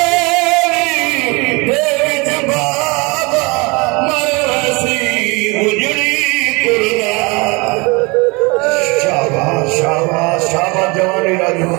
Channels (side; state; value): left; quieter; 27.3 dB